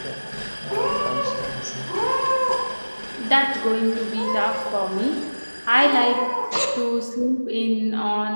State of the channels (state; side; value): inverted; both; correlation -1.00